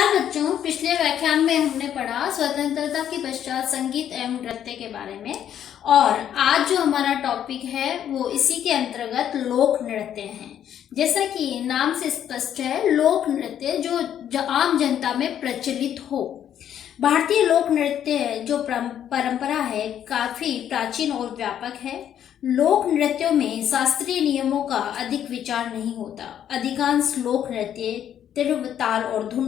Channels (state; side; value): quieter; right; 10.0 dB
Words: बच्चों, पिछले व्याख्यान में हमने पढ़ा स्वतंत्रता के पश्चात संगीत एवं नृत्य के बारे में। और आज जो हमारा टॉपिक है वो इसी के अंतर्गत लोक नृत्य है। जैसा कि नाम से स्पष्ट है, लोक नृत्य जो आम जनता में प्रचलित हो। भारतीय लोक नृत्य जो परंपरा है काफी प्राचीन और व्यापक है। लोक नृत्यों में शास्त्रीय नियमों का अधिक विचार नहीं होता। अधिकांश लोक नृत्य तीव्र ताल और